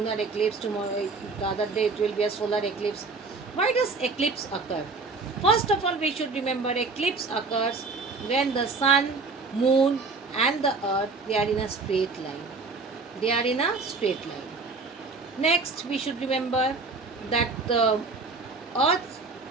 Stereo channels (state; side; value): quieter; left; 4.0 dB